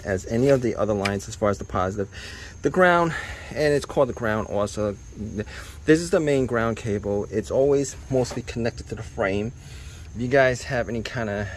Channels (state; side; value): identical; both; correlation 1.00